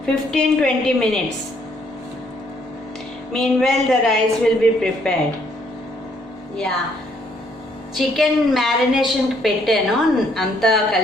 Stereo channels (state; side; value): normal; both; correlation 0.68